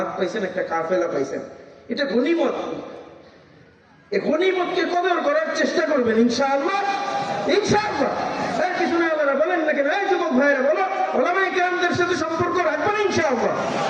পাইছেন, একটা কাফেলা পাইছেন, এটা গনিমত। এই গনিমতকে কদর করার চেষ্টা করবেন ইনশাআল্লাহ। ইনশাআল্লাহ। এর পিছনে আল্লাহরা বলেন না কেন? এই যুবক ভাইরা বলো, উলামায়ে কেরামদের সাথে সম্পর্ক রাখবেন ইনশাআল্লাহ।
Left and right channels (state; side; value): identical; both; correlation 1.00